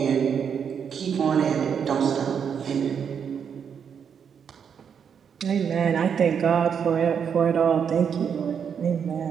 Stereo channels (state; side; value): quieter; left; 7.3 dB